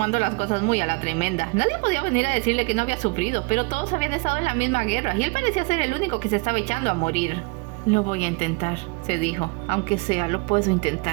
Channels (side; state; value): left; quieter; 29.4 dB